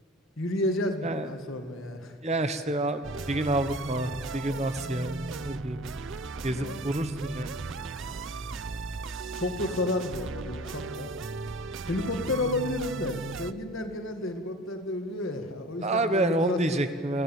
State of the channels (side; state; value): both; normal; correlation 0.43